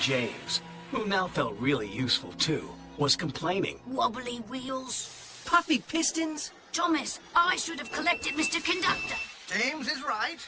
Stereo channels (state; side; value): identical; both; correlation 1.00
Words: who now felt really useful too, was complaining. Wobbly wheels. Puffy pistons? Thomas, I should have collected Mr. Conductor. James is right,